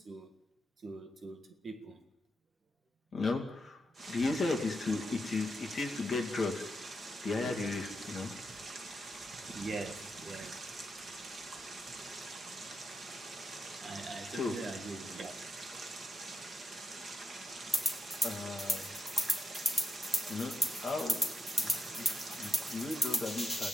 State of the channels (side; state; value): both; normal; correlation 0.82